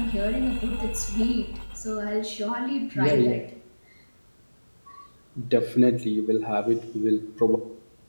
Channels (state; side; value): inverted; both; correlation -1.00